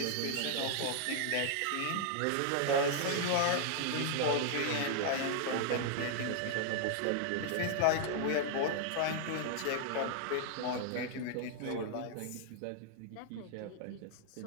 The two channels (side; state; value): both; different; correlation -0.01